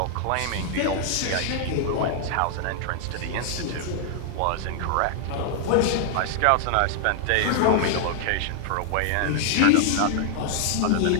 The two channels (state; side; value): different; both; correlation 0.00